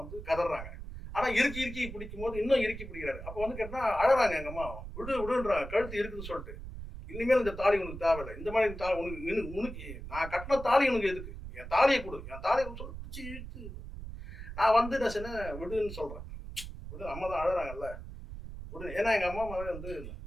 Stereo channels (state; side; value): noise; right; rumble, 10 dB below the sound